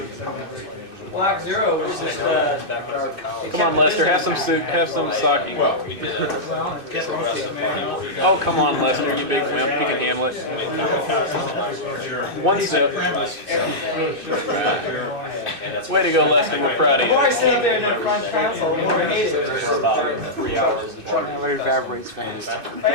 Block Zero was just, Come on, Lester. Have some soup. Have some sake. Well, Oh, come on, Lester. You big wimp. You can handle it. One sip. Way to go, Lester. We're proud of the more I you. sit up there in that front console, the more I hate it. For about 3 hours. But it evaporates fast. If I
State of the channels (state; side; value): late; left; 2.6 ms